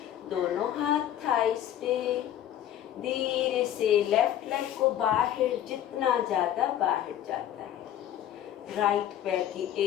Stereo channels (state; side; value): quieter; right; 11.3 dB